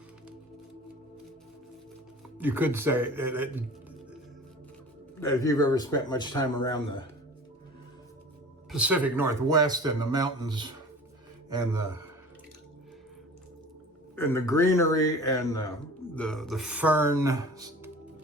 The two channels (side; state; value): both; normal; correlation 0.41